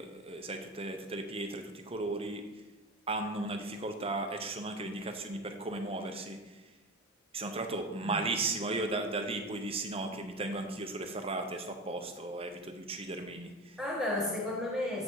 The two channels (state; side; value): normal; both; correlation 0.28